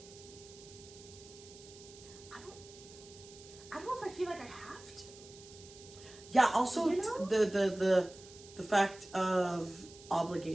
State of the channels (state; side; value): noise; right; hiss, 19 dB below the sound